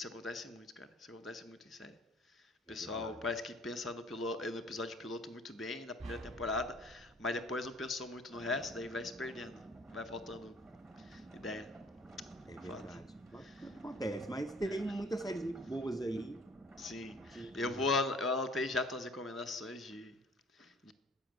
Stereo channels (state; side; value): normal; both; correlation 0.53